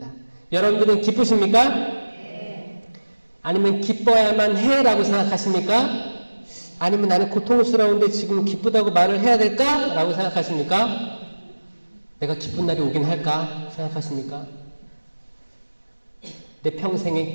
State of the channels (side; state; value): both; inverted; correlation -1.00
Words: 여러분들은 기쁘십니까? 네. 아니면 기뻐야만 해 라고 생각하십니까? 아니면 나는 고통스러운데 지금 기쁘다고 말을 해야 될까? 라고 생각하십니까? 내가 기쁜 날이 오긴 할까? 생각하십니까? 내